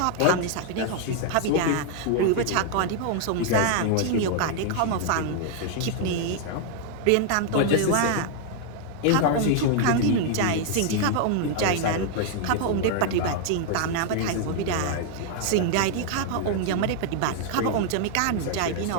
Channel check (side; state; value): both; different; correlation 0.00